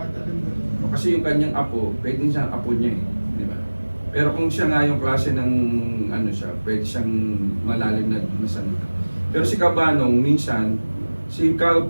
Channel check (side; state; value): both; inverted; correlation -1.00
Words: Kasi yung kanyang apo, pwedeng siyang apo niya eh. Di ba? Pero kung siya nga yung klase ng ano siya, pwede siyang malalim na salita. Pero si Cabanong, minsan, si